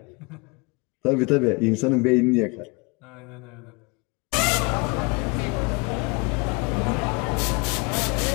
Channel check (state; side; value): quieter; right; 29.4 dB